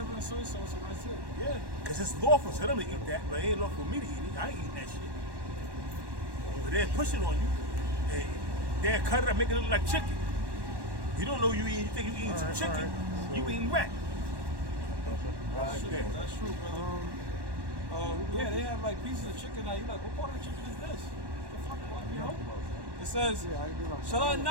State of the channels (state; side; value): late; left; 1.1 ms